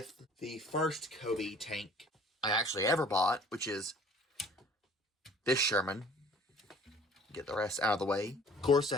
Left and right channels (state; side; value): normal; both; correlation 0.51